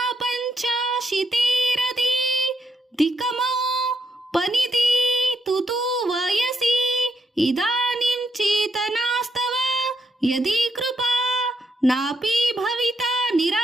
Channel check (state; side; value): normal; both; correlation 0.78